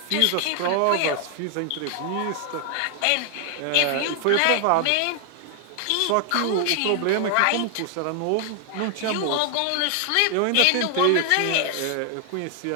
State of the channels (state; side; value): different; both; correlation 0.00